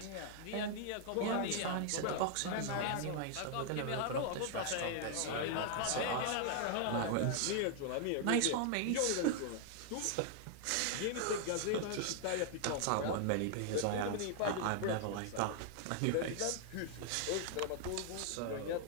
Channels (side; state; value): both; different; correlation 0.00